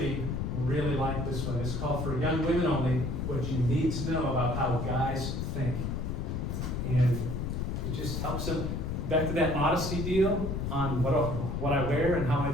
really liked this one. It's called For Young Women Only, What You Need to Know About How Guys Think. And it just helps them, back to that modesty deal on what I wear and how I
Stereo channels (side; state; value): left; noise; rumble, 2 dB below the sound